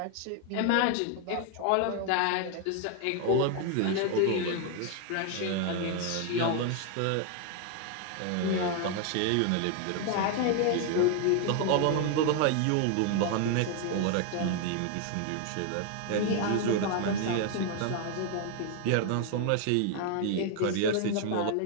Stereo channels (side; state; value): both; different; correlation 0.01